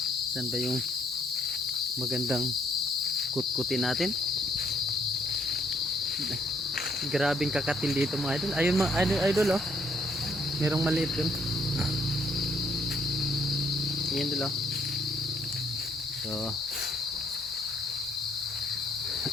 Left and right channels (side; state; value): both; normal; correlation 0.69